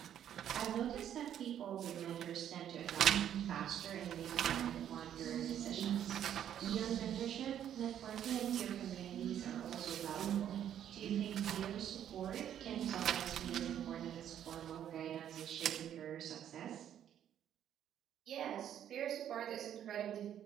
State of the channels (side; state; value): left; quieter; 10.2 dB